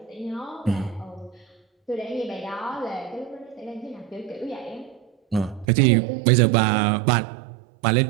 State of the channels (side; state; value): left; drops out; at 5.7 s